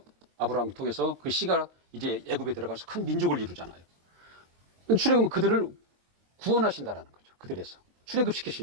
아브라함을 통해서 그 씨가 이제 애굽에 들어가서 큰 민족을 이루잖아요. 출애굽은 그들을 구원하신다라는 거죠. 그들에서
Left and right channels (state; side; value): late; left; 22 ms